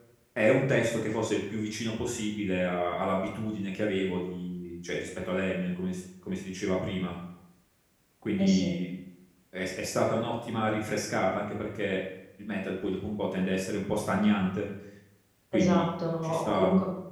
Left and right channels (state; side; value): identical; both; correlation 1.00